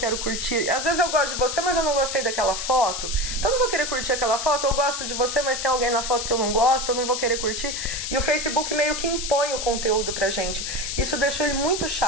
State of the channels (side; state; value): left; noise; hiss, 4 dB below the sound